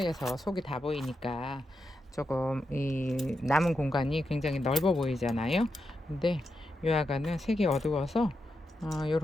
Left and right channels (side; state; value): both; normal; correlation 0.86